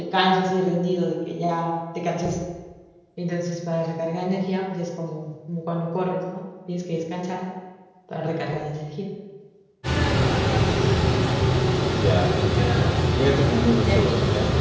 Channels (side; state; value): both; identical; correlation 1.00